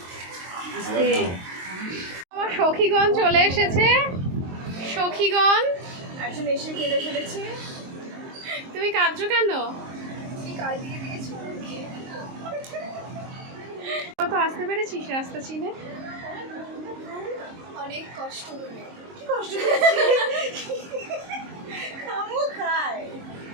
আমার সখীগণ চলে এসেছে। সখীগণ একজন এসে কেঁদে ফেলেছে। তুমি কাঁদছো কেন? কত আসতে পেরেছিস রাস্তা চিনে? অনেক কষ্ট করে।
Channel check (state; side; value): late; left; 22 ms